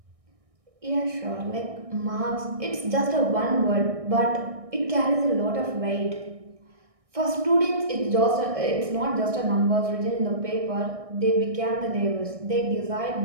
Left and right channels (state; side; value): late; left; 1.6 ms